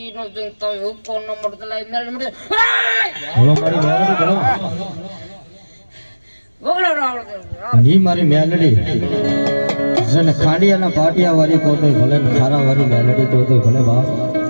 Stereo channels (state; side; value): inverted; both; correlation -1.00